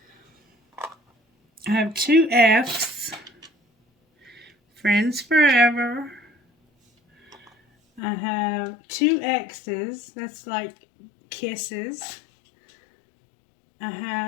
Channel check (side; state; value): right; drops out; at 8.0 s